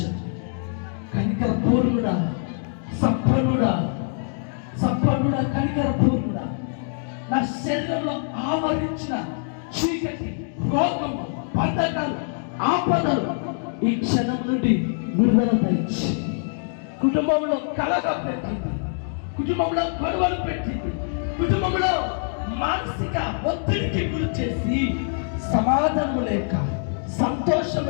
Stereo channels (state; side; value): silent; right; 62 dB below the other